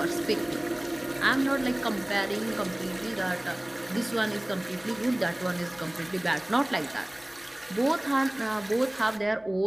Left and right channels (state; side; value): noise; left; hum, 29 dB below the sound